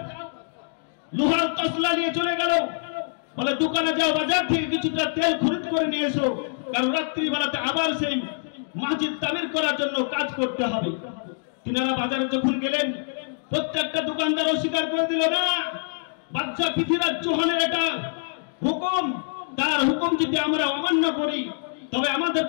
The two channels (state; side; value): silent; right; digital silence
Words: লোহার তসলা নিয়ে চলে গেল। বলে, দোকানে যাও, বাজার থেকে কিছুটা তেল খরিদ করে নিয়ে এসো, কারণ রাত্রিবেলাতে আবার সেই মসজিদ তামির করার জন্য কাজ করতে হবে। তিনারা বাজারে যখন গেলেন, প্রত্যেকটা দোকানদার অস্বীকার করে দিল, না, বাদশা পৃথ্বীরাজ চৌহানের এটা হুকুম, তার হুকুম যদি আমরা অমান্য করি তবে